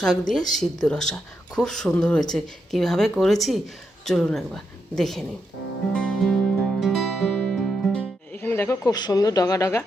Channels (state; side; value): normal; both; correlation 0.83